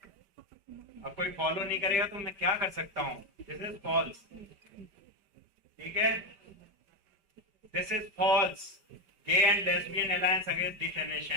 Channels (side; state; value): left; late; 5.1 ms